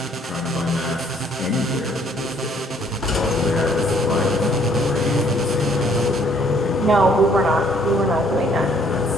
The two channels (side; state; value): both; normal; correlation 0.63